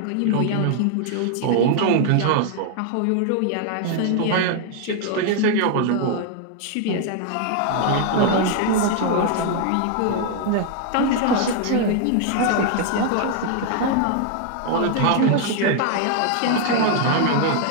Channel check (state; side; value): different; both; correlation 0.00